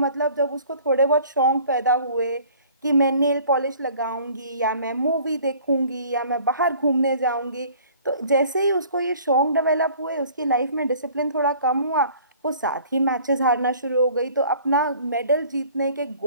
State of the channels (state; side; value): inverted; both; correlation -0.51